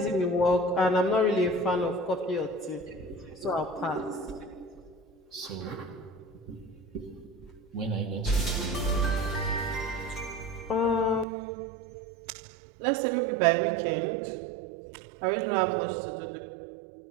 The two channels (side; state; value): left; drops out; at 11.2 s